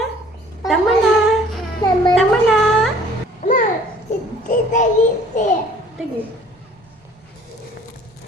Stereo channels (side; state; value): both; normal; correlation 0.53